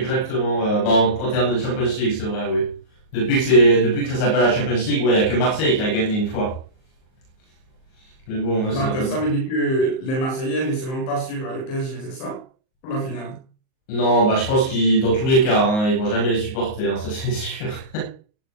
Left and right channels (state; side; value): late; right; 38 ms